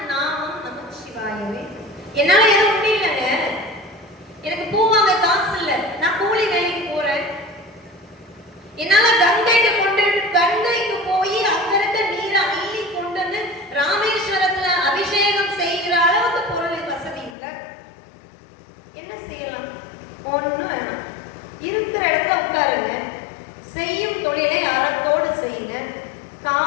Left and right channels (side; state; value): right; drops out; at 17.4 s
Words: நாமம் நமச்சிவாயவே. என்னால எதுவும் முடியலங்க, எனக்கு பூ வாங்க காசு இல்ல, நான் கூலி வேலைக்கு போறேன். என்னால கங்கைக்கு போய் அங்க இருக்க நீரை அள்ளி கொண்டு வந்து ராமேஸ்வரத்துல அபிஷேகம் செய்கிற அளவுக்கு பொருள் வசதி இல்லை. என்ன செய்யலாம்? ஒண்ணும் வேணாம், இருக்கிற இடத்துல உட்காருங்க, செய்யும் தொழிலை அறத்தோடு செய்யுங்க,